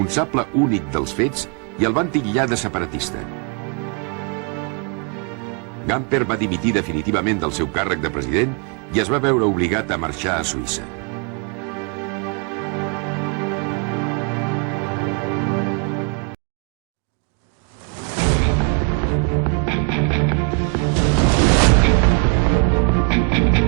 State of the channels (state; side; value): quieter; left; 35.5 dB